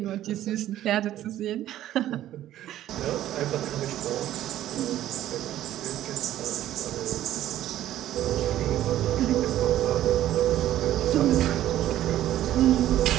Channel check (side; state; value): left; quieter; 12.9 dB